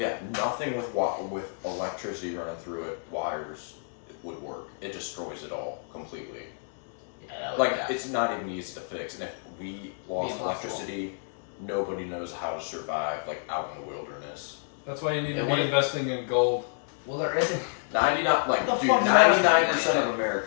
nothing with electricity running through it, wires, it would work. It destroys it all completely. Yeah, Like it's not even easy to fix. And if we lost electricity, nobody knows how to survive like out in the wilderness. That's why you need to be investing in gold. Well, there isn't 99% of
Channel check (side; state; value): right; silent; 59 dB below the other